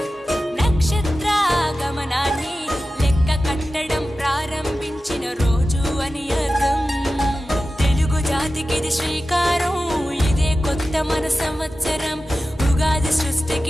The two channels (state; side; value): normal; both; correlation 0.94